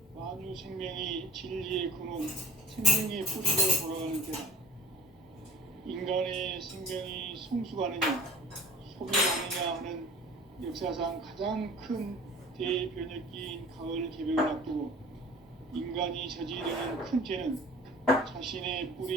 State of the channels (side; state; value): both; normal; correlation 0.46